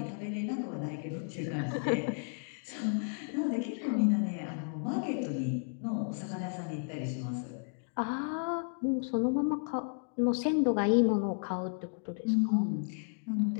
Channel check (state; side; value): silent; right; 56 dB below the other